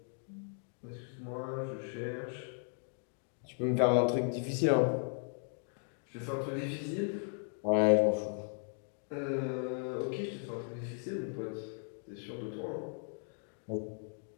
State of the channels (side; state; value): right; silent; 54 dB below the other